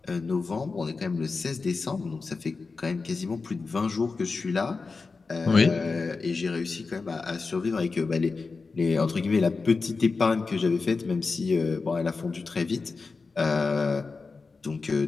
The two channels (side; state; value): right; quieter; 4.3 dB